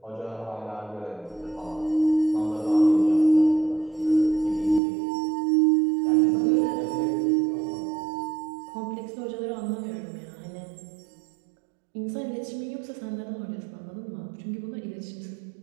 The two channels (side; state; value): left; drops out; at 4.8 s